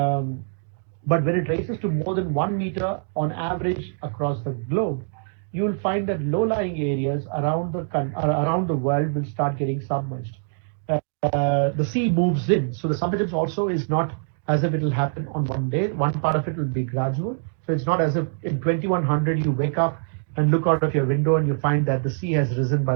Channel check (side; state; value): left; silent; digital silence